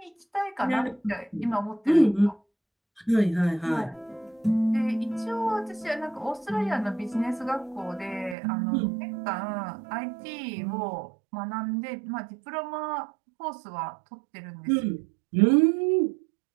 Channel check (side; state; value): left; drops out; at 8.3 s